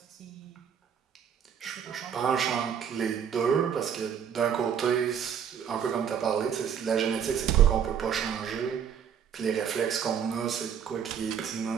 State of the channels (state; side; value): quieter; left; 8.1 dB